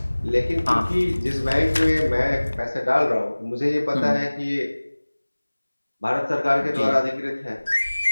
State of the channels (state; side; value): inverted; both; correlation -1.00